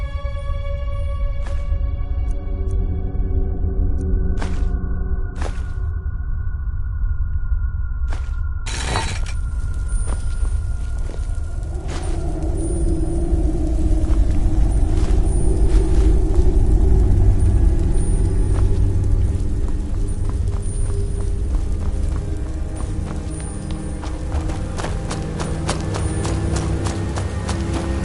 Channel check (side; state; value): both; identical; correlation 1.00